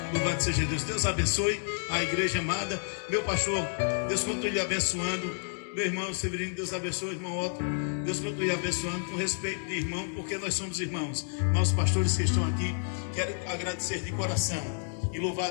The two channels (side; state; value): right; silent; digital silence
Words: Louvado seja Deus. Deus abençoe a igreja amada. Meu pastor, Deus continue lhe abençoando. Meu irmão Severino, Deus abençoe, irmão Otto. Deus continue lhe abençoando com respeito de irmão, porque nós somos irmãos. Mas os pastores que estão aqui, quero agradecer de coração e louvar